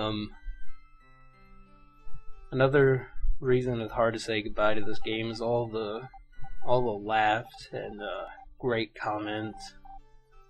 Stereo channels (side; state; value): both; identical; correlation 1.00